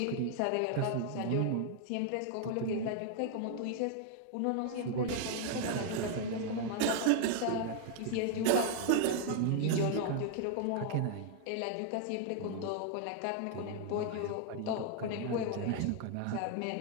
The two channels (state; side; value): different; both; correlation 0.00